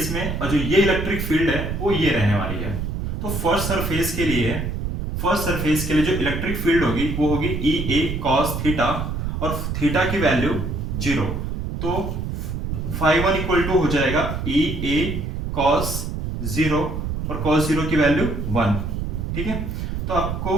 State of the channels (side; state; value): right; noise; rumble, 3 dB below the sound